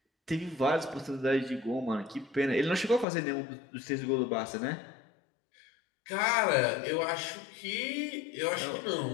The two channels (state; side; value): drops out; right; at 3.1 s